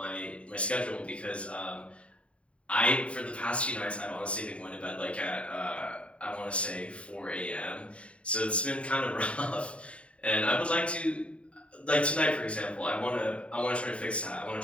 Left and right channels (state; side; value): late; right; 0.062 ms